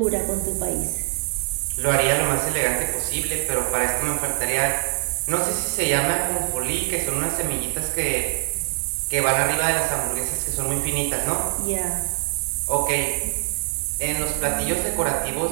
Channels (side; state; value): left; silent; digital silence